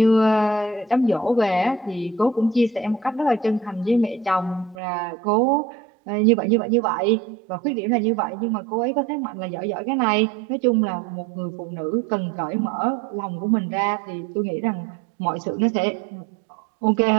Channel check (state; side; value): drops out; left; at 4.8 s